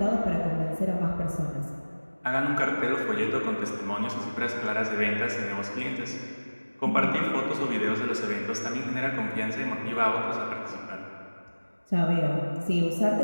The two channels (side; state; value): both; inverted; correlation -1.00